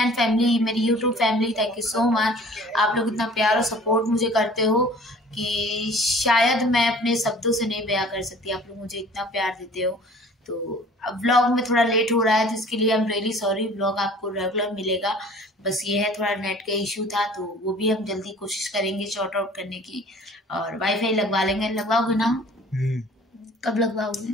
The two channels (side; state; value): both; normal; correlation 0.49